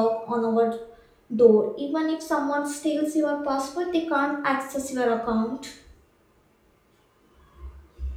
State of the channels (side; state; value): both; identical; correlation 1.00